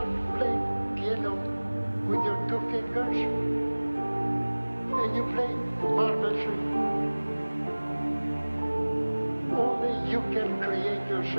playing piano with your 2 fingers and you play marvelously. Only you can create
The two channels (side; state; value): both; inverted; correlation -1.00